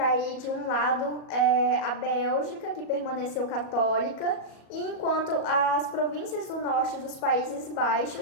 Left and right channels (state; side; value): late; right; 37 ms